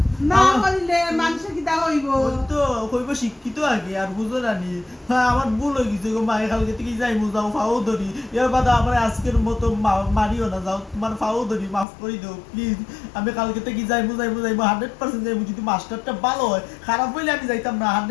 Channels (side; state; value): right; drops out; at 11.9 s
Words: না আমার করিলে মানুষ কিটা হইব? ওই তো কইব শিক্ষিত আগে আর বুঝো রানি। হ্যাঁ আমার ভুল হয়ে গেছে গো, মায়ের কালকে থেকে যাইমু, যাও ফাও ধরি, এর বাদে আমার আজকের মতো মারিও না, যাও তোমার ফাও ধরি, মাফ করে দাও প্লিজ। আমি কালকে থেকে যাইমু 100% যাইমু, যদি মাস্টারটা ভালো হয়, খারাপ হইলে আমি যাইতাম না,